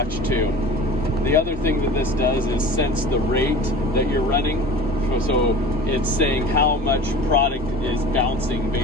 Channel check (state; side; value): normal; both; correlation 0.38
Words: too. The other thing that this does is sense the rate that you're running. So it's saying how much product is bouncing,